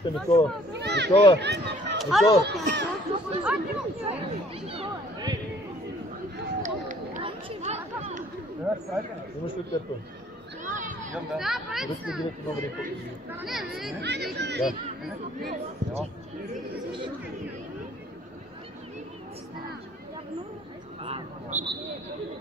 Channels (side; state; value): both; normal; correlation 0.58